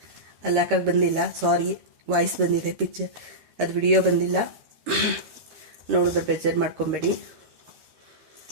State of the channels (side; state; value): left; late; 13 ms